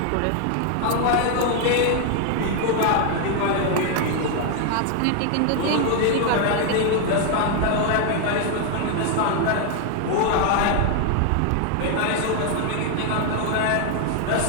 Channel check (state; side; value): different; both; correlation 0.00